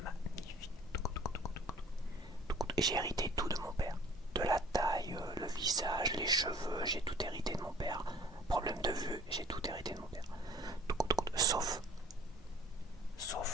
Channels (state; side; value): normal; both; correlation 0.50